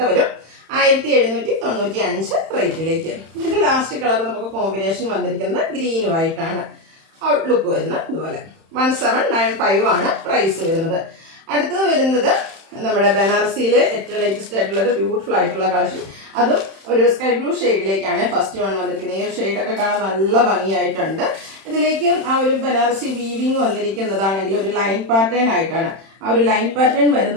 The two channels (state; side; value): late; left; 31 ms